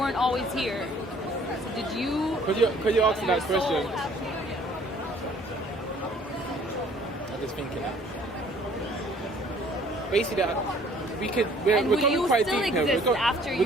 always here. So did you? Could you answer that question? I'm just thinking. Basically, we're And will going you quite still deep here. exist after We're you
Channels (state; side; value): normal; both; correlation 0.57